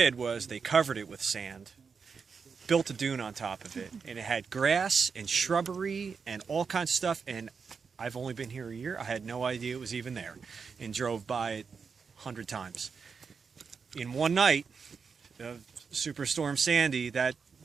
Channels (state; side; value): quieter; left; 5.6 dB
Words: was they covered it with sand, built a dune on top of it, and it had grass and shrubbery and all kinds of stuff. And I've only been here a year. I had no idea it was even there, and drove by it 100 times. In one night, Superstorm Sandy, the